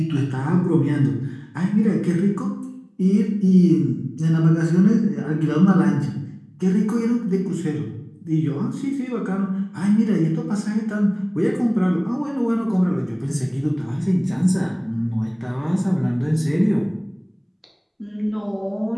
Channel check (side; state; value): both; identical; correlation 1.00